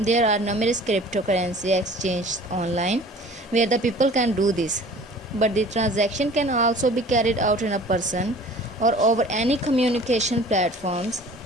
are numerous cryptocurrency exchanges online where the people can do this, but the transaction can also be carried out in a person or over any communication platforms,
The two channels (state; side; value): normal; both; correlation 0.47